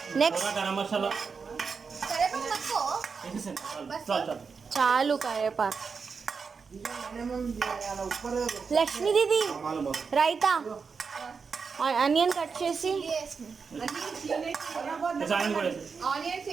నెక్స్ట్ గరం మసాలా కరివేపాకు తక్కువ. వేసేసాను. చాలు చాలు. చాలు కరివేపాకు. లక్ష్మీ దీది రైతా ఆనియన్ కట్ చేసి ఆనియన్ కూడా వేసేసి. ఆనియన్స్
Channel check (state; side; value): quieter; left; 5.4 dB